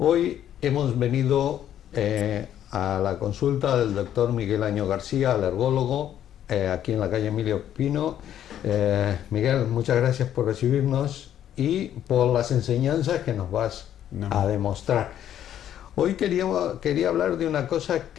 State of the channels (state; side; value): quieter; right; 10.7 dB